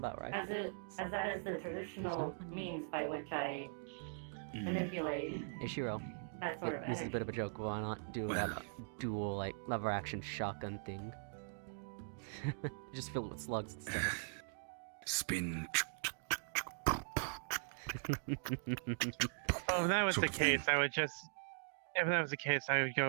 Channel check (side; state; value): left; silent; digital silence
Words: rifles. as that is the traditional means by which I manipulate Ishiro, that sort of this is a energy. bit of a joke. Why not do that dual like lever action shotgun thing? Just fill it with slugs and stuff. Spin. Oh, if that was the Sort of thing. case, I would just. If that was the case, I would